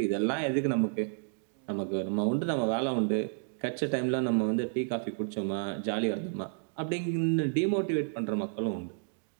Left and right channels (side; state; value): left; silent; digital silence